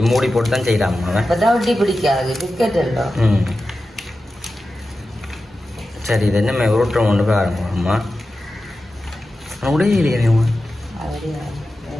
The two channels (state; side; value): normal; both; correlation 0.93